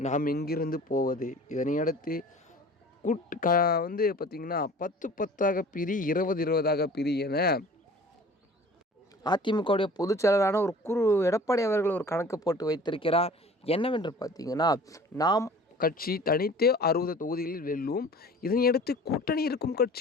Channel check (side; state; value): both; normal; correlation 0.45